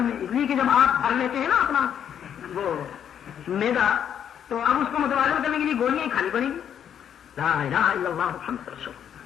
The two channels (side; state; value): right; quieter; 9.0 dB